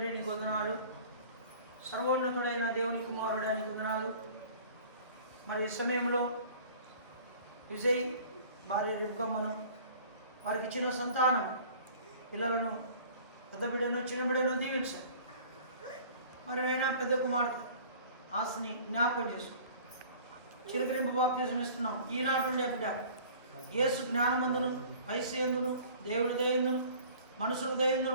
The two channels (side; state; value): both; inverted; correlation -0.47